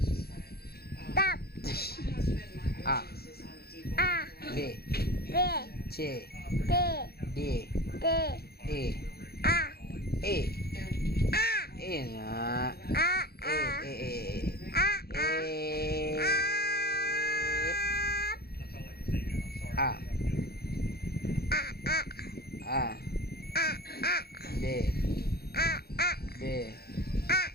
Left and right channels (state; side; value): late; right; 0.46 ms